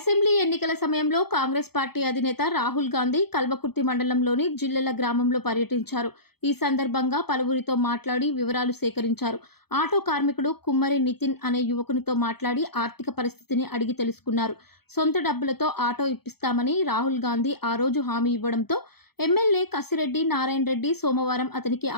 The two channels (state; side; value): late; right; 0.96 ms